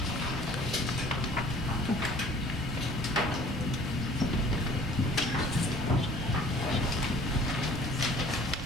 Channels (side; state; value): both; normal; correlation 0.51